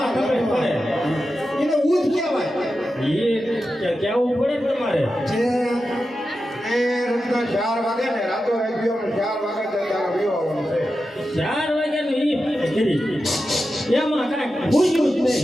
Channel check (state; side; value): normal; both; correlation 0.91